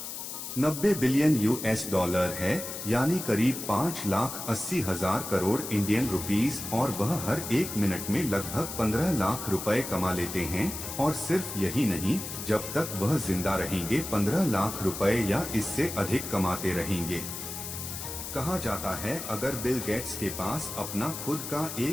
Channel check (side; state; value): left; noise; hiss, 7 dB below the sound